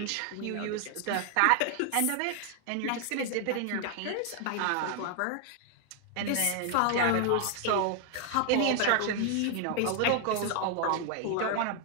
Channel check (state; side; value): different; both; correlation 0.00